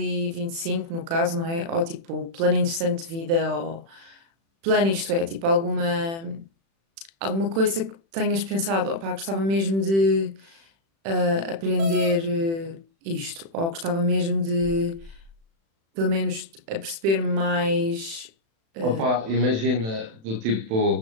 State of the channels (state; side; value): late; left; 36 ms